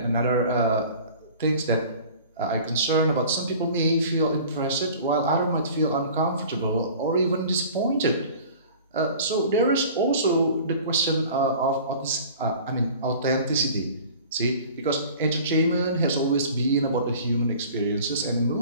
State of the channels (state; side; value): inverted; both; correlation -0.44